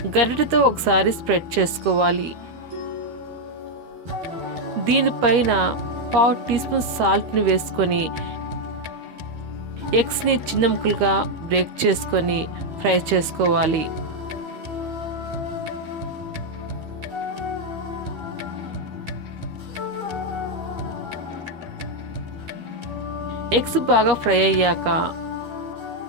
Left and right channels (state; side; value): late; left; 13 ms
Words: గరిటెతో ఒకసారి స్ప్రెడ్ చేసుకోవాలి. దీనిపైన 1/2 టీ స్పూన్ సాల్ట్ని వేసుకొని ఎగ్స్ని చిన్న ముక్కలుగా బ్రేక్ చేసుకొని ఫ్రై చేసుకోవాలి. ఎగ్స్ బాగా ఫ్రై అయ్యాక